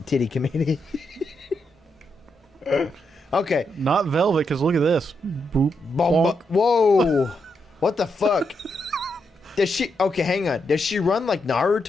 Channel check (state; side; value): normal; both; correlation 0.82